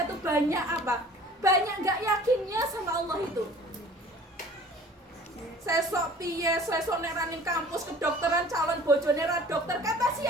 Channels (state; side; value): normal; both; correlation 0.48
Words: tuh banyak apa? Banyak nggak yakinnya sama Allah itu. Sesok piye, sesok neranin kampus kedokteran calon bojone ra dokter, kata